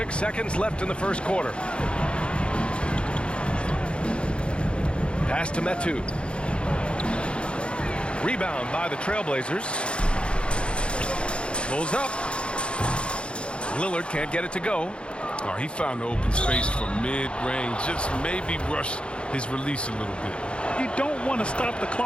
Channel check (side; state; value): right; late; 0.057 ms